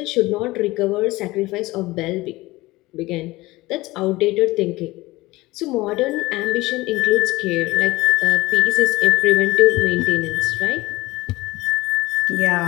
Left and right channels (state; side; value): quieter; right; 19.8 dB